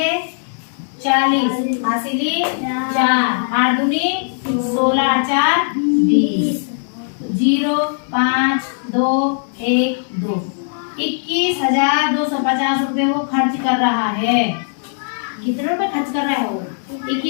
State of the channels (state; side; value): silent; right; digital silence